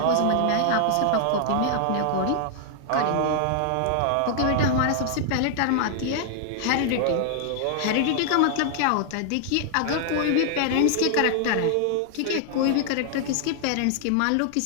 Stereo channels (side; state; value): both; different; correlation -0.01